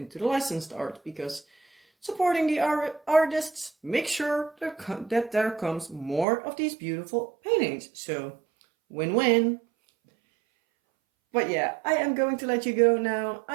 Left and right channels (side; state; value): left; drops out; at 6.2 s